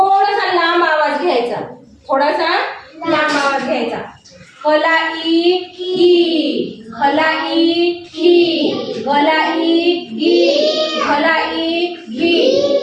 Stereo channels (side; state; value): both; identical; correlation 1.00